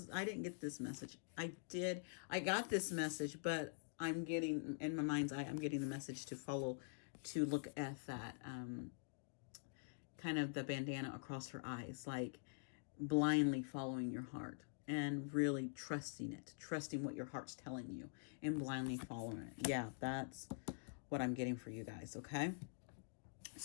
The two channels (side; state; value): right; silent; digital silence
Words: I didn't get this message. I got this message, but I'm getting in my mind's eye. I'm getting the message to look at that kind of the bandana across her eyes, like blindly following your heart and really trusting what your heart's telling you and blindly following it. Yeah, that's what I'm getting for you guys, okay?